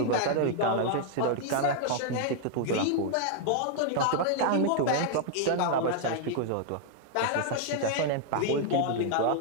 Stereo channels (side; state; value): both; different; correlation 0.00